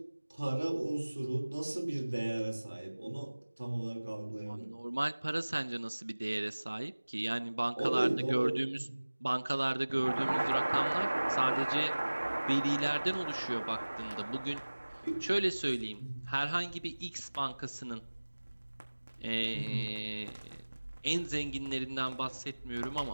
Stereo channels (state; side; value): inverted; both; correlation -1.00